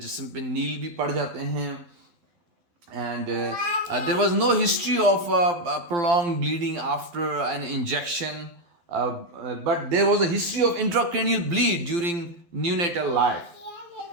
पे नील भी पड़ जाते हैं. And there was no history of prolonged bleeding after an injection. But there was a history of intracranial bleed during neonatal life.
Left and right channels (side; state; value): left; late; 12 ms